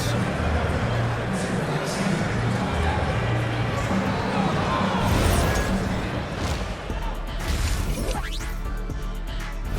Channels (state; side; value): identical; both; correlation 1.00